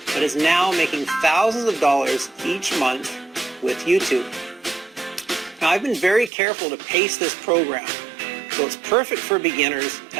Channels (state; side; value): drops out; left; at 6.3 s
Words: but is now making thousands of dollars each month with YouTube. Now, I've been very careful to pace this program so it's perfect for beginners